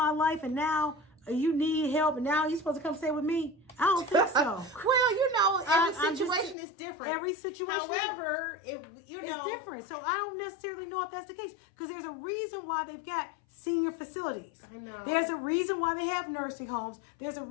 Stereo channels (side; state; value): right; drops out; at 6.6 s